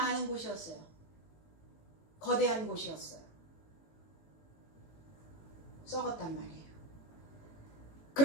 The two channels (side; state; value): right; late; 18 ms